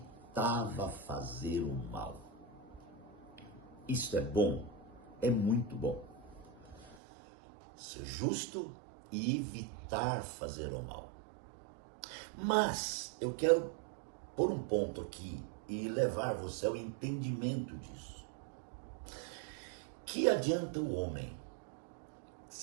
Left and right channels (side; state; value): left; drops out; at 7.0 s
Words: fazer o mal. Isso é bom? É muito bom. Ser justo e evitar fazer o mal. Mas eu quero pôr um ponto aqui e levar você ao entendimento disso. Que adianta o homem